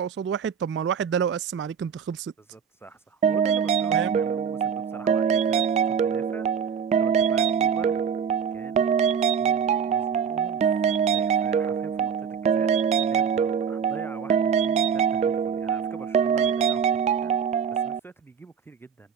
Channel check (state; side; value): quieter; left; 7.1 dB